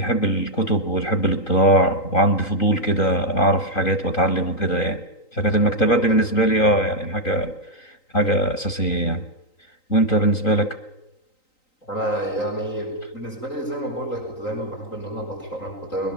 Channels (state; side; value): late; right; 3.9 ms